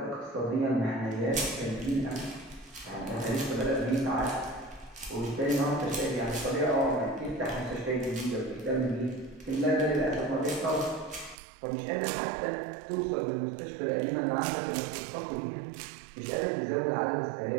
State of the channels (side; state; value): left; drops out; at 11.4 s